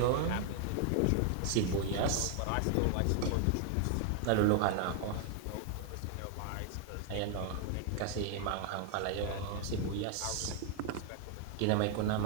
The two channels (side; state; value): both; different; correlation 0.00